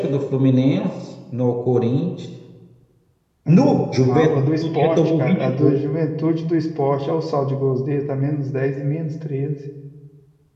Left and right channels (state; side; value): identical; both; correlation 1.00